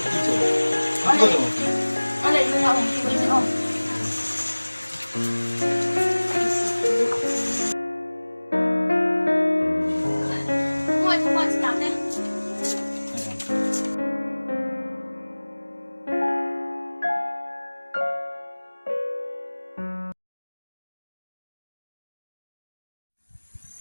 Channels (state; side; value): inverted; both; correlation -1.00